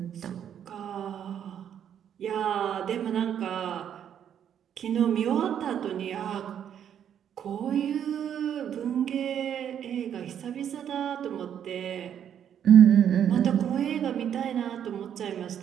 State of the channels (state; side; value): quieter; left; 9.2 dB